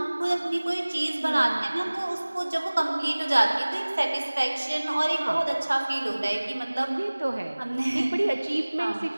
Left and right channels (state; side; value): inverted; both; correlation -1.00